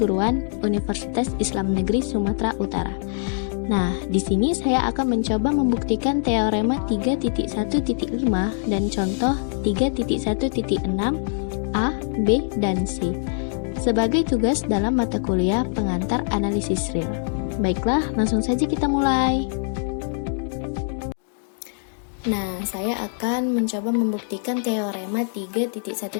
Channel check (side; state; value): right; silent; digital silence